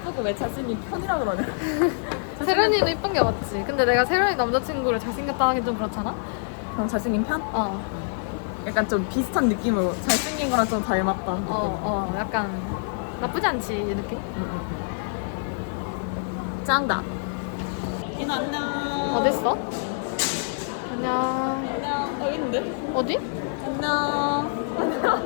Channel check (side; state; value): right; silent; digital silence